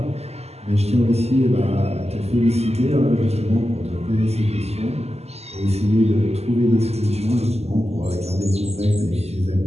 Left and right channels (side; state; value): left; late; 0.30 ms